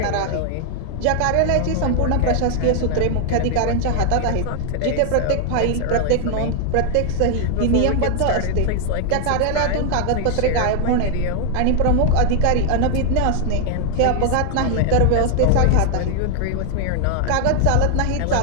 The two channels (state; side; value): different; both; correlation 0.00